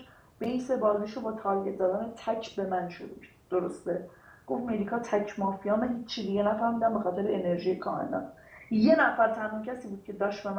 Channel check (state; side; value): identical; both; correlation 1.00